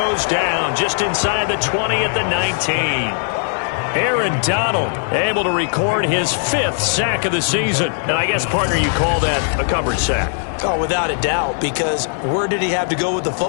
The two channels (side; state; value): right; silent; 57 dB below the other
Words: down just inside the 20 at the 19. Aaron Donald able to record his 5th sack of the season. And I guess, partner, you call that a covered sack. Oh, without a doubt, because where did he have to go with the